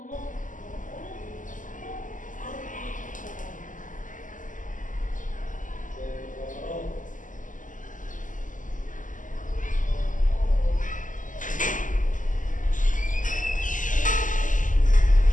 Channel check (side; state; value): right; late; 0.38 ms